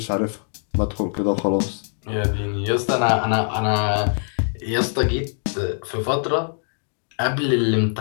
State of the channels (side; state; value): right; silent; digital silence